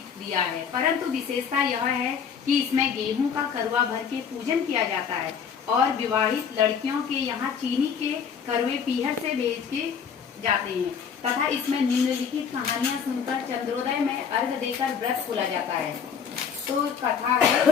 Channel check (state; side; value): quieter; right; 7.0 dB